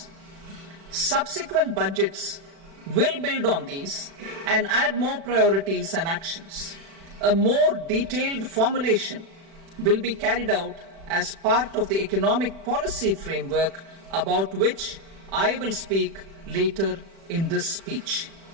Subsequent budgets will build on these and add more priorities and actions. A more detailed formulation will be carried out as part of the economic policy framework, about which I will speak later in this speech.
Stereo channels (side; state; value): left; late; 36 ms